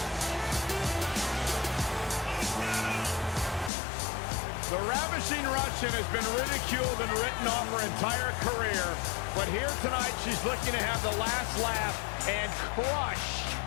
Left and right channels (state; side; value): drops out; right; at 3.7 s